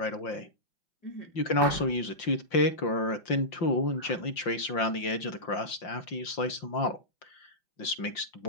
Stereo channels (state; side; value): late; right; 5.7 ms